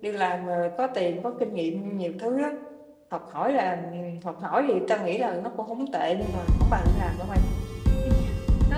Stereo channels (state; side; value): identical; both; correlation 1.00